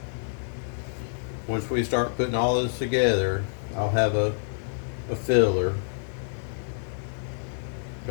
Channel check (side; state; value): right; silent; digital silence